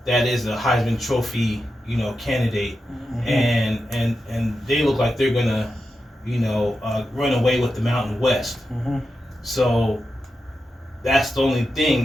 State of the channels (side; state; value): both; normal; correlation 0.89